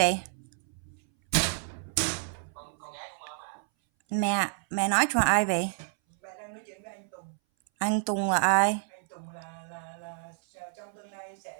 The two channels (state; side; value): silent; left; 58 dB below the other